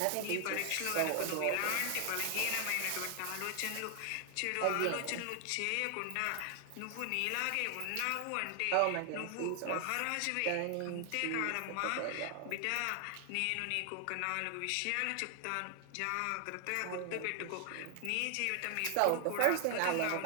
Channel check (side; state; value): both; different; correlation 0.00